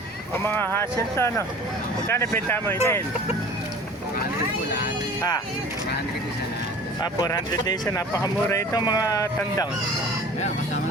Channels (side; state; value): both; normal; correlation 0.44